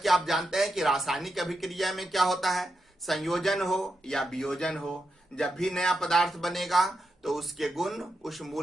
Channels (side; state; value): both; normal; correlation 0.86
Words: आप जानते हैं कि रासायनिक अभिक्रिया में क्या होता है, संयोजन हो या वियोजन हो, जब भी नया पदार्थ बनेगा तो उसके गुण उस